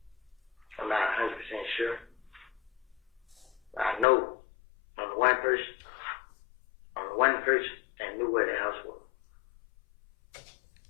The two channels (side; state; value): right; drops out; at 4.0 s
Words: I'm not 100% sure. I know on the one person that knew where the house was.